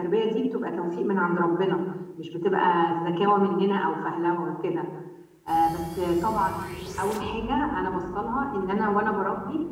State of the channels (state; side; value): identical; both; correlation 1.00